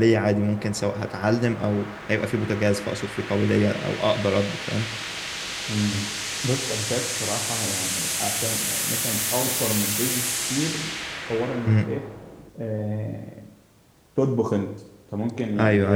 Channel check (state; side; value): identical; both; correlation 1.00